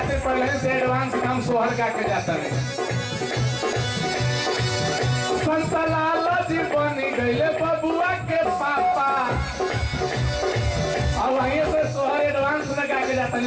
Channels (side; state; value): both; identical; correlation 1.00